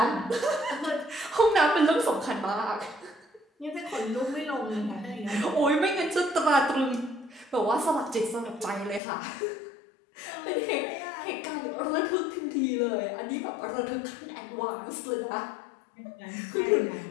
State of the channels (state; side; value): drops out; right; at 9.0 s